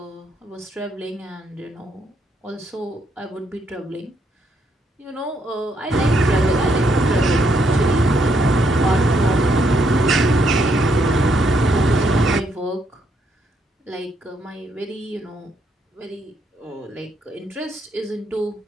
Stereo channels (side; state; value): both; normal; correlation 0.75